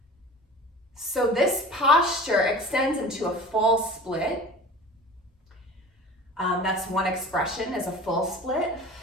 So this posture extends into a full split. That's one expression, is a full split.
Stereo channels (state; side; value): normal; both; correlation 0.39